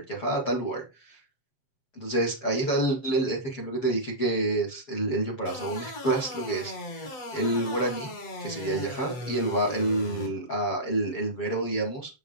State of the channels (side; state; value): right; late; 7.3 ms